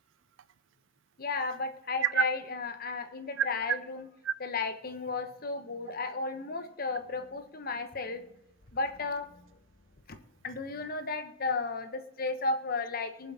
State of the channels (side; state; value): both; normal; correlation -0.18